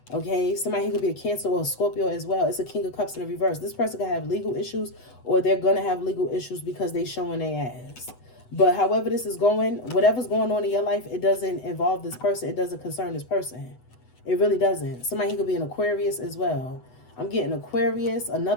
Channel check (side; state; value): right; late; 8.0 ms